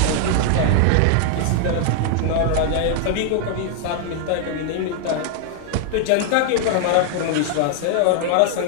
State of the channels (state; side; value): different; both; correlation 0.00